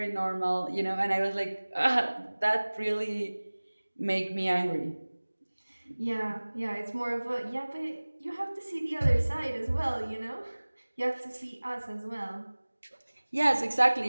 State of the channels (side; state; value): both; inverted; correlation -1.00